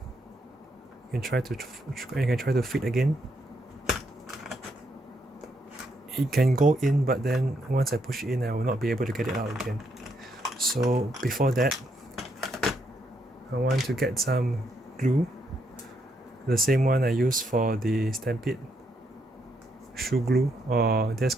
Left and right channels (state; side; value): normal; both; correlation 0.76